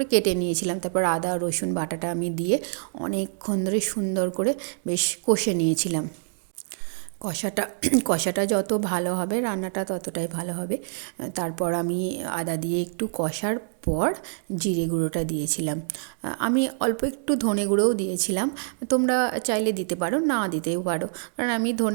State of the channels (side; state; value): left; silent; digital silence